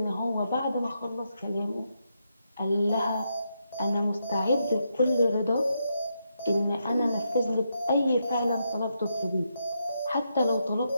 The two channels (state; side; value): inverted; both; correlation -0.82